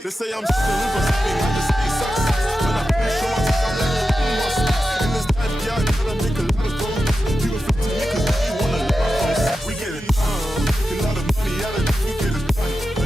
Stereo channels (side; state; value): both; normal; correlation 0.91